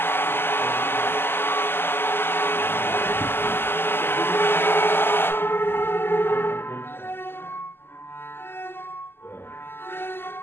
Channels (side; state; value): right; late; 0.11 ms